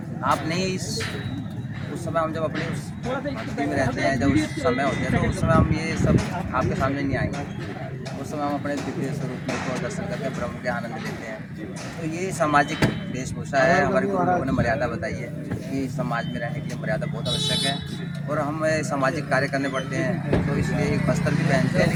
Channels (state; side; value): identical; both; correlation 1.00